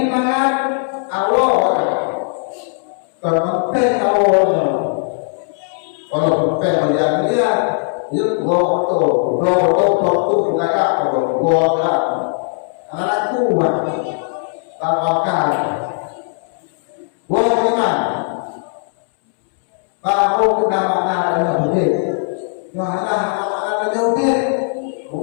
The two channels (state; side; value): silent; right; 67 dB below the other